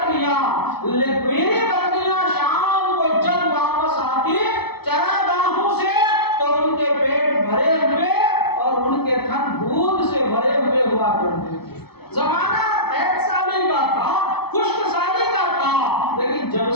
شام کو جب واپس آتی چراگاہوں سے، تو ان کے پیٹ بھرے ہوئے اور ان کے تھن دودھ سے بھرے ہوئے ہوا کرتے تھے۔ زمانہ قحط سالی کا تھا، خشک سالی کا تھا، لیکن جب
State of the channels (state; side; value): late; right; 0.97 ms